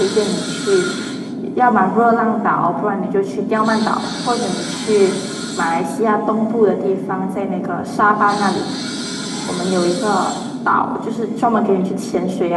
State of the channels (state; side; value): identical; both; correlation 1.00